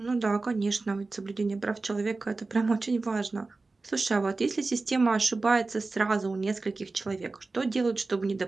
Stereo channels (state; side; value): quieter; left; 3.6 dB